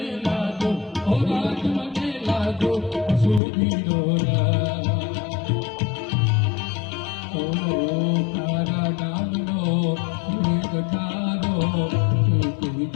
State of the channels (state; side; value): drops out; right; at 3.4 s